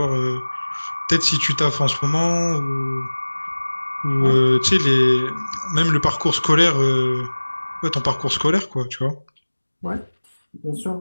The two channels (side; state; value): both; inverted; correlation -1.00